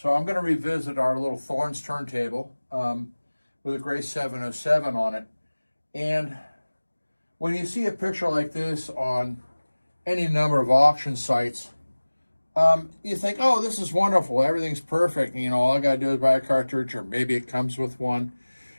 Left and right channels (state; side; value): inverted; both; correlation -1.00